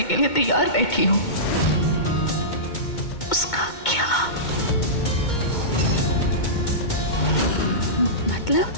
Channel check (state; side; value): late; right; 2.2 ms